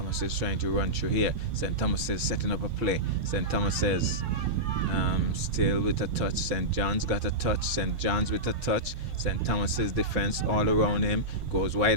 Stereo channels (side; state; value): left; late; 5.1 ms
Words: is trying to run through here. St. Thomas is setting up a play. St. Thomas is still with a touch. St. John's got a touch. St. John's with a touch. St. Thomas's defense all around him. Goes